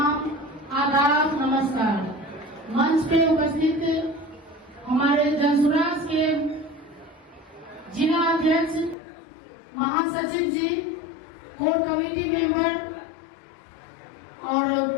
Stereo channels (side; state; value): right; drops out; at 9.0 s